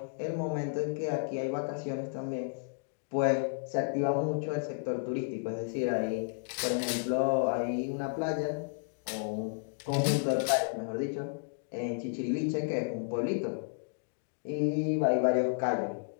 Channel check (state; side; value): silent; right; digital silence